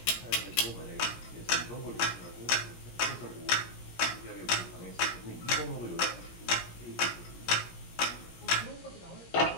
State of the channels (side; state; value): right; late; 17 ms